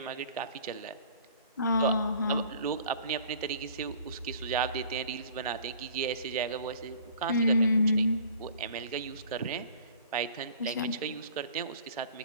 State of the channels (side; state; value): both; inverted; correlation -0.49